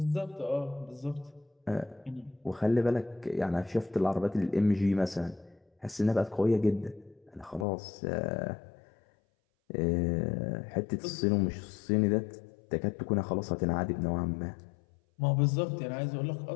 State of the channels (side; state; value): right; drops out; at 7.7 s